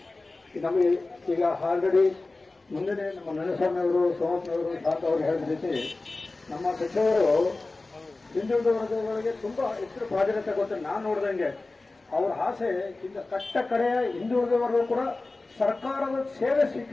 ನಮಗೆ ಈಗ ಆಲ್ರೆಡಿ ಮುಂದೆ ನಮ್ಮ ನರಸ್ವಾಮಿಯವರು, ಸೋಮಪ್ಪನವರು, ಶಾಂತ ಅವರು ಹೇಳಿದ ರೀತಿ ನಮ್ಮ ಸಚಿವರು ಹಿಂದುಳಿದ ವರ್ಗಗಳಿಗೆ ತುಂಬಾ ಹೆಚ್ಚು ಪ್ರಾಧಾನ್ಯತೆ ಕೊಟ್ಟು ನಾನು ನೋಡಿದಂಗೆ ಅವರ ಆಸೆ ಇಂದ ಕಟ್ಟ ಕಡೆಯ ಹಿಂದುಳಿದ ವರ್ಗ ಕೂಡ ಸರ್ಕಾರದ ಸೇವೆ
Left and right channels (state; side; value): quieter; right; 3.3 dB